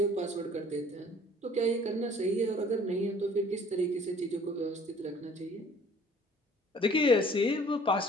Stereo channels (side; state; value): both; normal; correlation 0.53